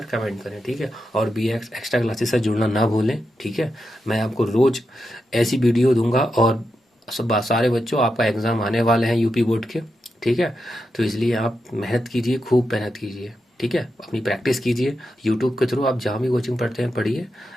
कमेंट करें, ठीक है। और BX एक्स्ट्रा क्लासेस से जुड़ना ना भूलें, ठीक है। मैं आपको रोज ऐसी वीडियो दूंगा, और सब सारे बच्चों आपका एग्जाम आने वाले हैं यूपी बोर्ड के, ठीक है। तो इसलिए आप मेहनत कीजिए, खूब मेहनत कीजिए, ठीक है। अपनी प्रैक्टिस कीजिए यूट्यूब के थ्रू, आप जहाँ भी कोचिंग पढ़ते हैं पढ़िए,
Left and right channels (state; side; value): normal; both; correlation 0.87